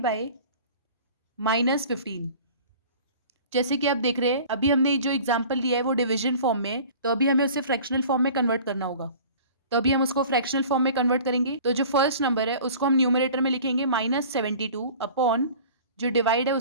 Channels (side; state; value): both; inverted; correlation -0.44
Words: बाय -15। जैसे कि आप देख रहे हैं, अभी हमने जो एग्जाम्पल लिया है वो डिवीजन फॉर्म में है, तो अभी हमें उसे फ्रैक्शनल फॉर्म में कन्वर्ट करना होगा। तो अभी हम उसको फ्रैक्शनल फॉर्म में कन्वर्ट करेंगे। तो जो फर्स्ट नंबर है उसको हम न्यूमरेटर में लिखेंगे -72 अपॉन जो डिवाइड है